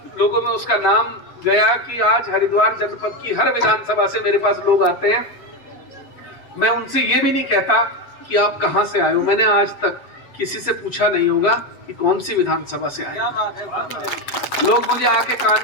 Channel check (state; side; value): late; right; 7.5 ms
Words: लोगों में उसका नाम गया कि आज हरिद्वार जनपद की हर विधानसभा से मेरे पास लोग आते हैं। मैं उनसे ये भी नहीं कहता कि आप कहां से आए हो। मैंने आज तक किसी से पूछा नहीं होगा कि कौन सी विधानसभा से आए। लोग मुझे आके कान